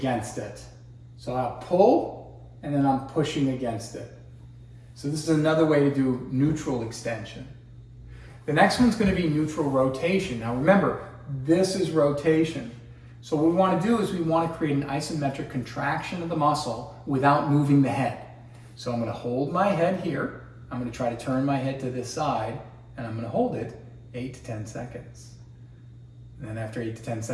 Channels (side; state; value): both; identical; correlation 1.00